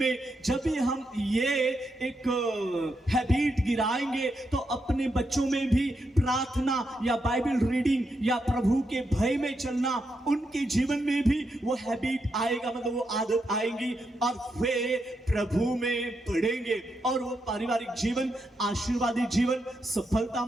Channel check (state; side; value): normal; both; correlation 0.83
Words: जब भी हम ये एक हैबिट गिराएंगे तो अपने बच्चों में भी प्रार्थना या बाइबल रीडिंग या प्रभु के भय में चलना, उनके जीवन में भी वो हैबिट आएगा, वो आदत आएगी, और वे प्रभु में बढ़ेंगे, और वो पारिवारिक जीवन, आशीर्वादी जीवन,